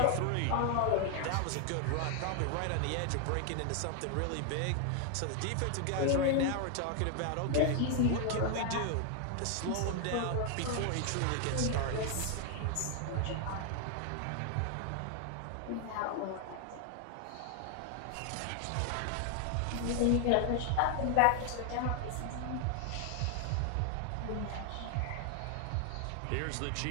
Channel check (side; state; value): both; different; correlation 0.00